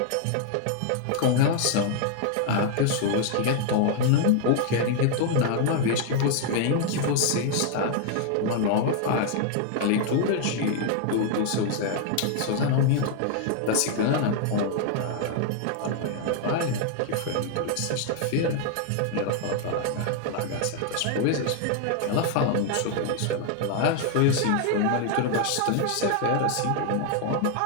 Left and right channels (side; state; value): both; different; correlation 0.00